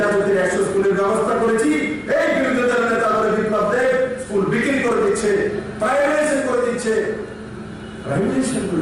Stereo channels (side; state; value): both; identical; correlation 1.00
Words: 100 স্কুলের ব্যবস্থা করেছি, এই বিরোধী দলের নেতা বলে বিপ্লব দেব স্কুল বিক্রি করে দিচ্ছে, প্রাইভেটাইজেশন করে দিচ্ছে। প্রাইভেটাইজেশন